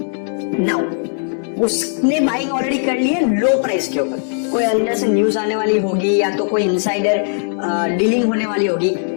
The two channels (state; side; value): silent; right; 67 dB below the other